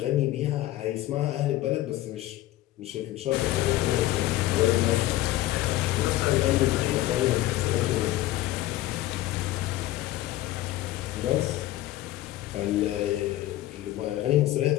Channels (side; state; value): right; quieter; 15.5 dB